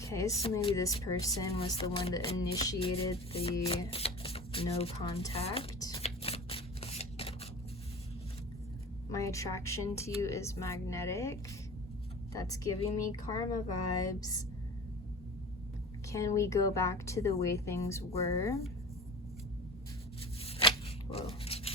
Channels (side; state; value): both; normal; correlation 0.36